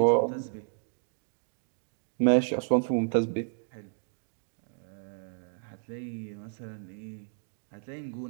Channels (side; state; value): left; silent; digital silence